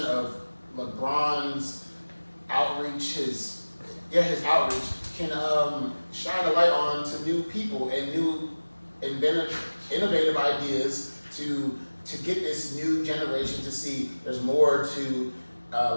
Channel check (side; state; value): both; inverted; correlation -1.00